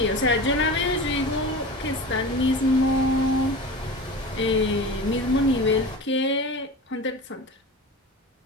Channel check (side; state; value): both; normal; correlation 0.31